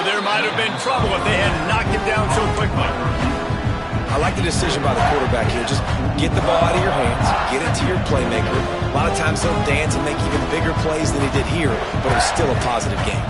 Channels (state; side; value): identical; both; correlation 1.00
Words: there might have been trouble if they had knocked it down so quickly. I like the decision by the quarterback here. Just get the ball out of your hands, get it to your playmaker. A lot of times he'll dance and make even bigger plays than he did here, but it was still a positive game.